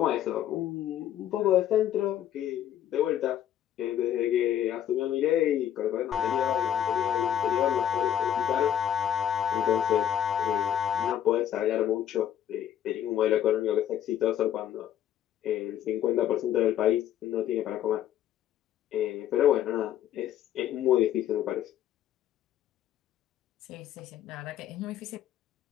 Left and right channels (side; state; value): right; quieter; 10.8 dB